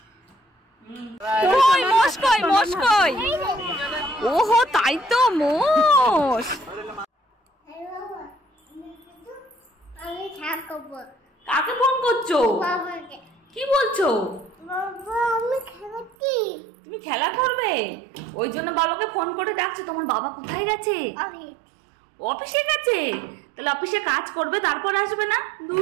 কই মোষ কই, মোষ কই? ওহো তাই তো মোষ। কাকে ফোন করছো? কি বলছো? তুমি খেলা করবে? ওই জন্য বাবাকে ফোন করে ডাকছো। তোমার বাবা কোথায় গেছে? অফিসে গেছে। তাহলে অফিসে কাজ করবে তারপর আসবে না?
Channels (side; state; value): left; drops out; at 16.2 s